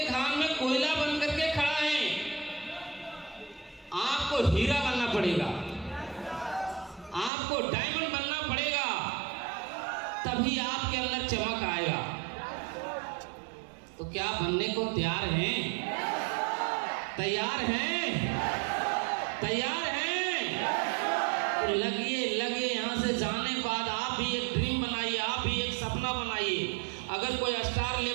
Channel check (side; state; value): left; drops out; at 7.3 s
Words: खान में कोयला बन करके खड़ा है, आपको हीरा बनना पड़ेगा, आपको डायमंड बनना पड़ेगा, तभी आपके अंदर चमक आएगा। तो क्या बनने को तैयार हैं? तैयार हैं? तैयार हैं? तो लगिए लगिए। यहाँ से जाने के बाद आप भी एक ड्रीम बनाइए, आप भी एक सपना बनाइए। अगर कोई स्टार